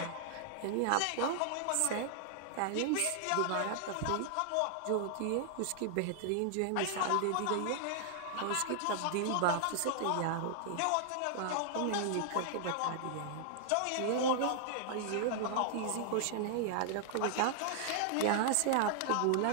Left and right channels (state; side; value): different; both; correlation -0.01